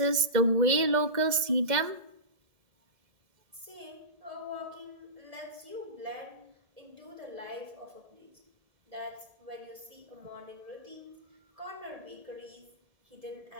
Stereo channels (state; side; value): late; left; 2.0 ms